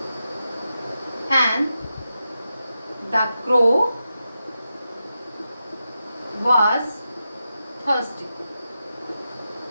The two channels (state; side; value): inverted; both; correlation -0.89